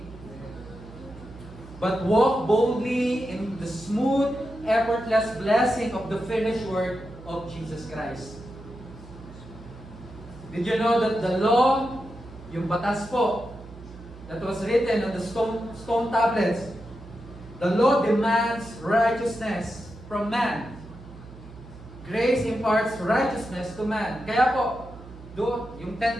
but walk boldly in the smooth, effortless blessing of the finished work of Jesus Christ. Did you know that the law, yung batas po, that was written on the stone tablets, the law demands righteousness from man. Grace imparts righteousness to man. Kaya po, doon, yung 10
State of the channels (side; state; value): right; noise; hum, 17 dB below the sound